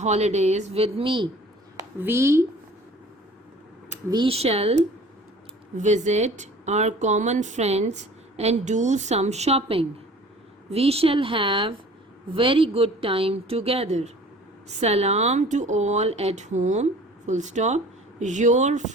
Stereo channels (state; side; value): normal; both; correlation 0.47